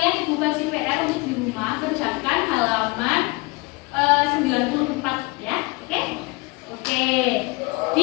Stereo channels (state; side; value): quieter; right; 25.3 dB